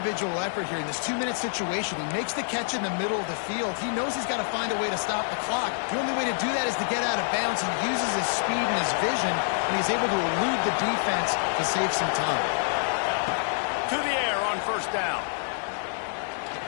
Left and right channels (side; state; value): right; silent; digital silence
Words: effort here in this 2-minute situation. He makes the catch in the middle of the field. He knows he's got to find a way to stop the clock. The only way to do that is to get out of bounds. He uses his speed and his vision, and he's able to elude the defense to save some time. To the air on 1st down.